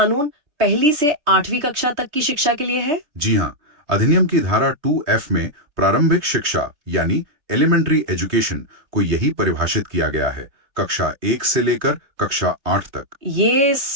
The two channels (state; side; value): late; left; 3.3 ms